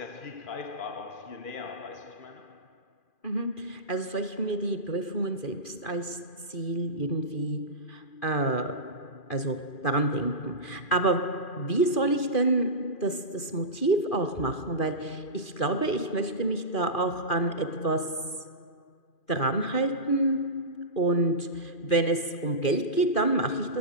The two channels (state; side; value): late; right; 2.4 ms